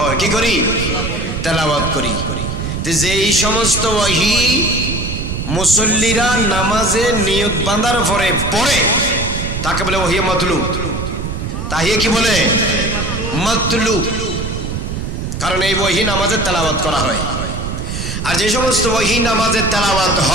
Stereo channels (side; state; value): right; noise; rumble, 4 dB below the sound